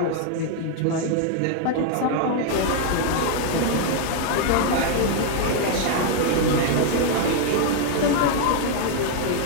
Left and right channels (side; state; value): both; different; correlation 0.00